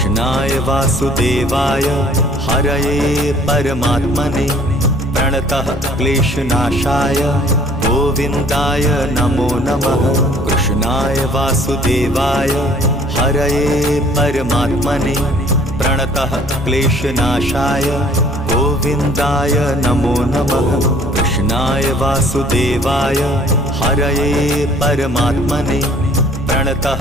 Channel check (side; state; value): both; normal; correlation 0.56